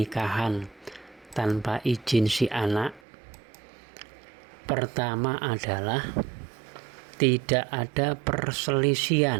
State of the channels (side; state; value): left; drops out; at 3.0 s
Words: tanpa izin si anak, pertama adalah tidak ada